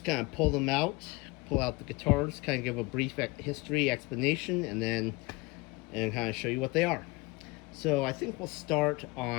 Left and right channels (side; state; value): right; quieter; 24.1 dB